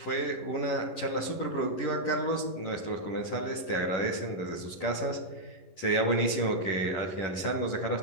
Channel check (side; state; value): right; late; 11 ms